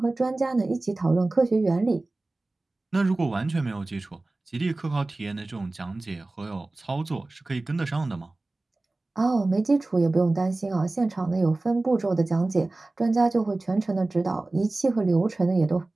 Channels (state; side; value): quieter; left; 3.0 dB